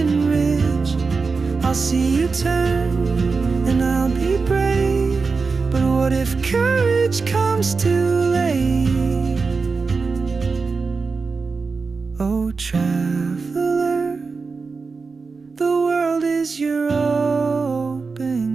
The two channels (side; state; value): left; quieter; 4.5 dB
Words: ridge, I'll see you turn and I'll be brave. But what if courage comes too late? Oh, traveler, the world is your